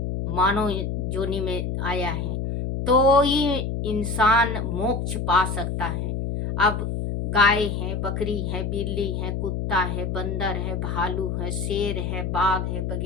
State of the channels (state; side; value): noise; left; hum, 2 dB below the sound